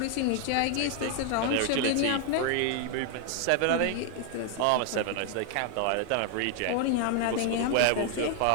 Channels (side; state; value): both; different; correlation 0.00